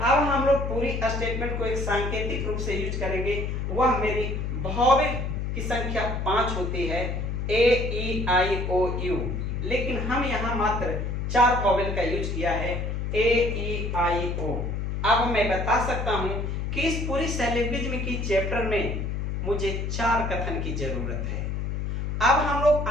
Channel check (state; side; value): noise; left; hum, 2 dB below the sound